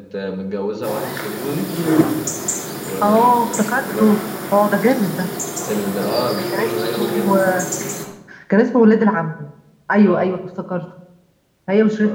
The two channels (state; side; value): identical; both; correlation 1.00